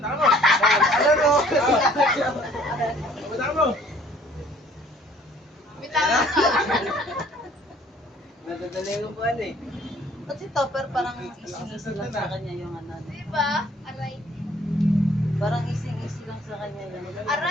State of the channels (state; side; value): normal; both; correlation 0.57